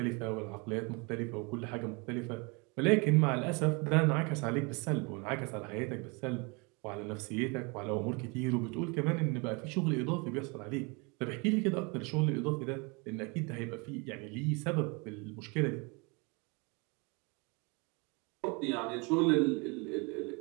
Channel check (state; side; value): quieter; left; 30.0 dB